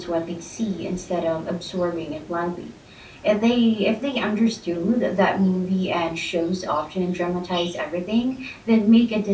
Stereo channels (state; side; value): identical; both; correlation 1.00